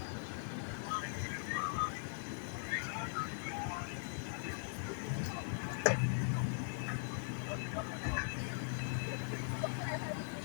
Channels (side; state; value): right; silent; digital silence